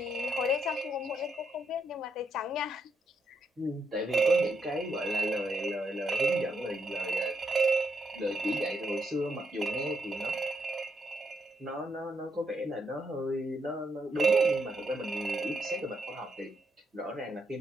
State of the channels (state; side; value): normal; both; correlation 0.79